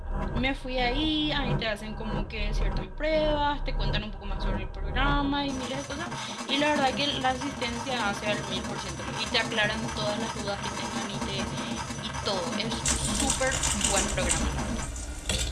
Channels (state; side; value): identical; both; correlation 1.00